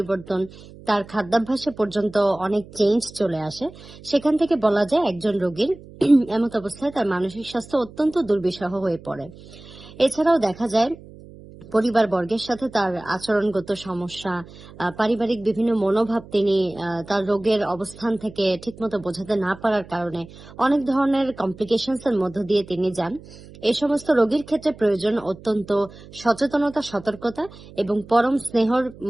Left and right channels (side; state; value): right; noise; hum, 19 dB below the sound